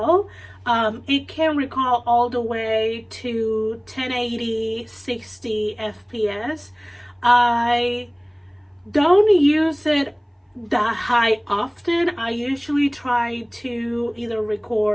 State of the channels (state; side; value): identical; both; correlation 1.00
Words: It can record all the way to 1080, 60 FPS. I don't use it that high often. I usually try to either